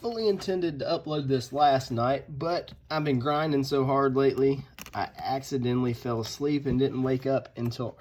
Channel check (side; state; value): both; identical; correlation 1.00